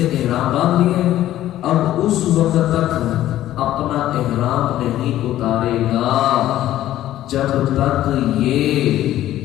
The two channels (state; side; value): quieter; right; 13.4 dB